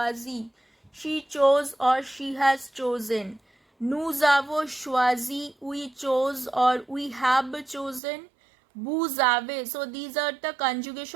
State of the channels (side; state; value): left; drops out; at 8.0 s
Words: she chose or she has chosen. Nous avons choisi, we chose or we have chosen. Vous avez. So these are the